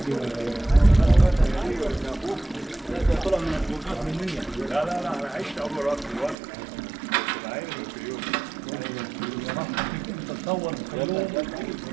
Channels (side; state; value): left; drops out; at 6.4 s